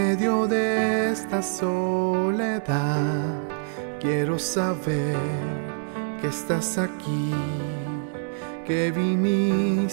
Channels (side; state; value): left; silent; 56 dB below the other